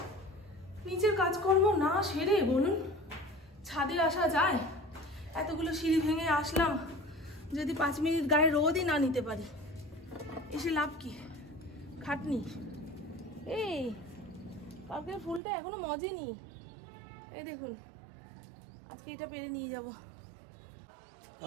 নিজের কাজকর্ম না সেরে বলুন ছাদে আসা যায়? এতগুলো সিঁড়ি ভেঙে আসলাম, যদি 5 মিনিট গায়ে রোদই না নিতে পারি, এসে লাভ কি? খাটনি। এই কালকের ফুলটা এখনো মজেনি, এই দেখুন, আজকে এটা পেরে নিয়ে যাব।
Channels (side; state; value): left; drops out; at 15.4 s